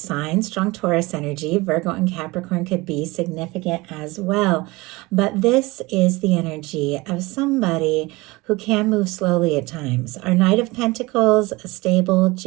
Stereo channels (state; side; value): quieter; left; 22.5 dB